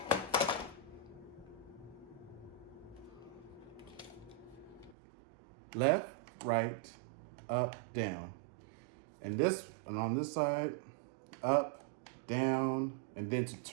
left, right, up, down. And on this side, up, down, and then to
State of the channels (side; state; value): left; drops out; at 5.0 s